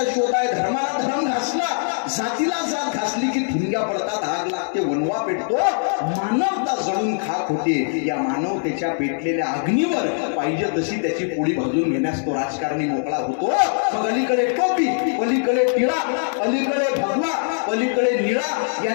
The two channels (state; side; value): silent; right; digital silence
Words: शोध आहे. धर्माला धर्म घासला, जातीला जात घासली की ठिणग्या पडतात, आग लागते, वनवा पेटतो, मानवता जळून खाक होते. या मानवतेच्या पेटलेल्या अग्नीवर पाहिजे तशी त्याची पोळी भाजून घेण्यास तो राजकारणी मोकळा होतो. मग अलीकडे टोपी, पलीकडे टिळा, अलीकडे भगवा, पलीकडे निळा,